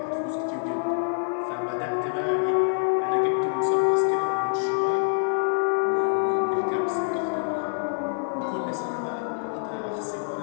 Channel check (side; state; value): right; silent; 61 dB below the other